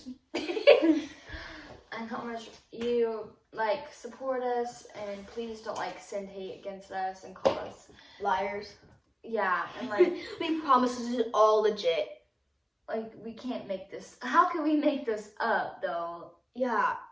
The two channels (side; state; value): both; identical; correlation 1.00